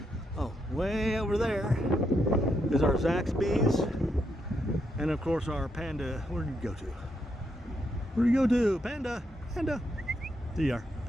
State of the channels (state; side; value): normal; both; correlation 0.79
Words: Way over there is our Zaxby's, and of course our Panda. Where did you go to? Where do you go to? Panda, Panda. There you are,